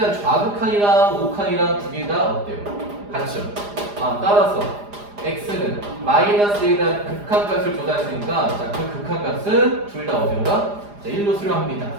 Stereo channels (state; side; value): late; left; 4.9 ms